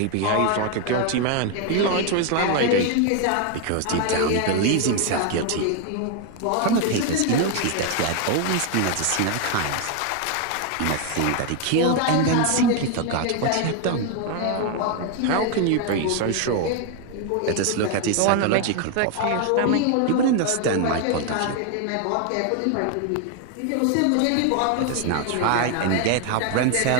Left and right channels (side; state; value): both; different; correlation 0.01